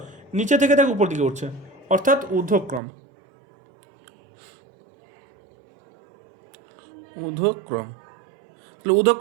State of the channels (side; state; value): left; drops out; at 2.8 s